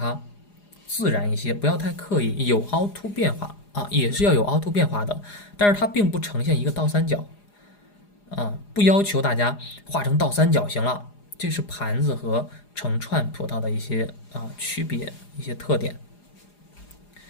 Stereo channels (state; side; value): late; right; 4.9 ms